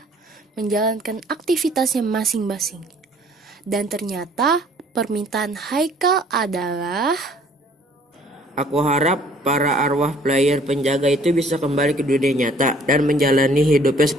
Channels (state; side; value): normal; both; correlation 0.57